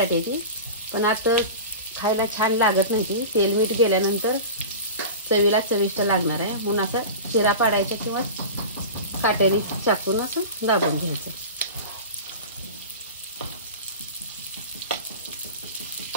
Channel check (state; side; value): inverted; both; correlation -0.31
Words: ती, पण आता खायला छान लागत नाही ती, तेल मीठ गेल्यानंतर चवीला चविष्ट लागणार आहे। म्हणून असा चिरा पाडायचा किंवा काटेरी चाकून असं दाबून घ्यायचं।